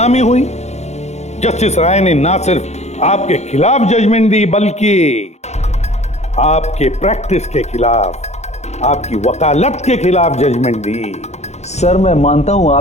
हुई। जस्टिस राय ने ना सिर्फ आपके खिलाफ जजमेंट दी, बल्कि आपके प्रैक्टिस के खिलाफ, आपकी वकालत के खिलाफ जजमेंट दी। सर, मैं मानता हूं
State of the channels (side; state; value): right; late; 0.32 ms